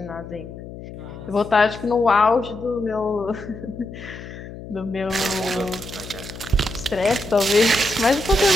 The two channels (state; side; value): noise; left; hum, 13 dB below the sound